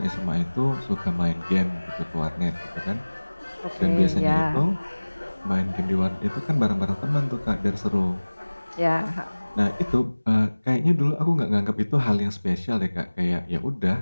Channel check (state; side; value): inverted; both; correlation -1.00